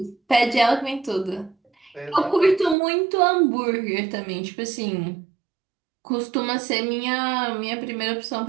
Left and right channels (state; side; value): drops out; left; at 2.8 s